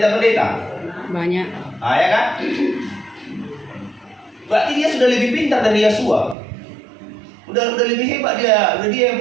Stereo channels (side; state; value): left; drops out; at 6.4 s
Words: Banyak. Ya kan? Berarti dia sudah lebih pintar dari Yasua. Udah lebih hebat dia. Udah dia